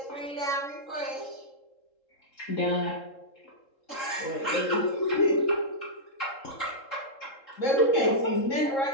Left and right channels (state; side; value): late; right; 3.7 ms